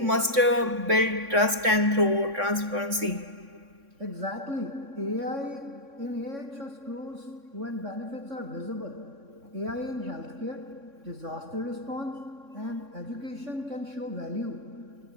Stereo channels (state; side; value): late; left; 3.6 ms